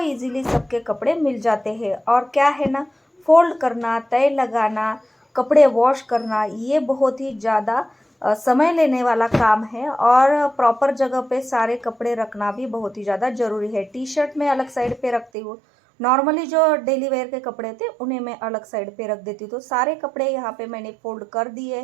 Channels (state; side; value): drops out; left; at 15.3 s